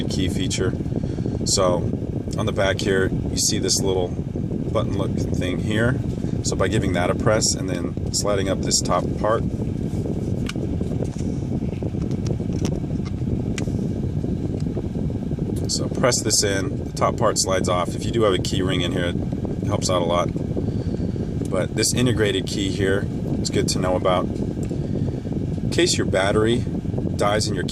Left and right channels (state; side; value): identical; both; correlation 1.00